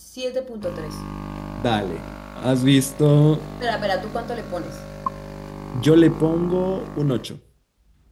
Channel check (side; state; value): both; identical; correlation 1.00